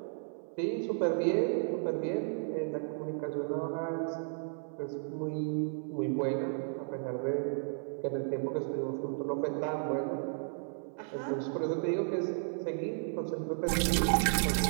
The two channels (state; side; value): silent; left; 55 dB below the other